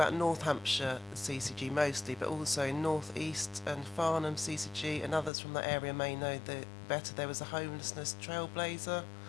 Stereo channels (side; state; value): right; drops out; at 5.3 s